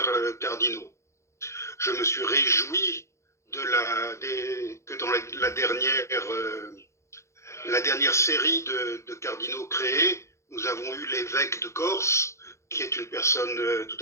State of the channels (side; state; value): right; late; 0.14 ms